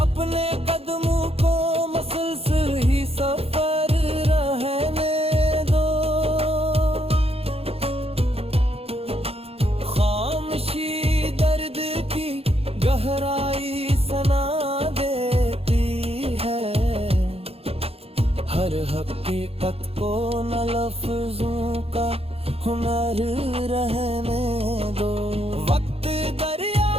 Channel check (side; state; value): left; late; 0.29 ms